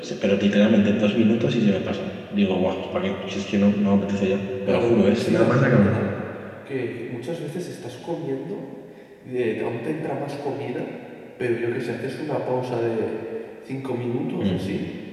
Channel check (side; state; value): both; identical; correlation 1.00